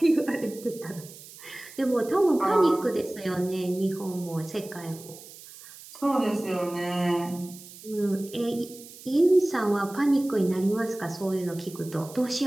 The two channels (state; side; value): noise; right; hiss, 18 dB below the sound